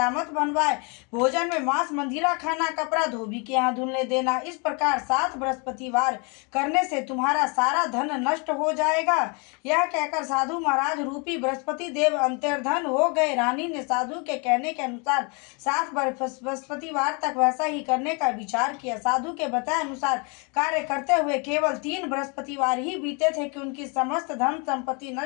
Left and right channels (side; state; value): right; quieter; 32.9 dB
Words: बनवाए, भोजन में मांस मंदिरा खाना, कपड़ा धोबी के यहाँ धुलने देना। इस प्रकार 7 बृहस्पतिवार करने से तुम्हारा सारा धन नष्ट हो जाएगा। यह कहकर साधु महाराज रूपी बृहस्पति देव अंतर्धन हो गए। रानी ने साधु के कहने के अनुसार 7 बृहस्पतिवार तक वैसा ही करने का विचार किया। साधु के बताए अनुसार कार्य करते हुए केवल 3 बृहस्पतिवार ही बीते थे कि उनकी समस्त धन संपत्ति